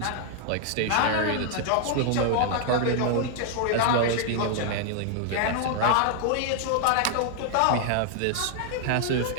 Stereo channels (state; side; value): different; both; correlation 0.00